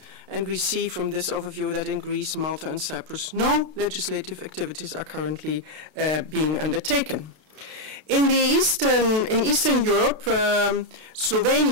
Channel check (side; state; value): left; late; 32 ms